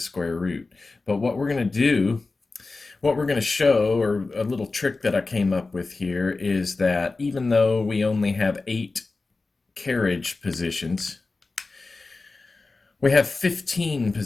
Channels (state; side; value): quieter; right; 3.7 dB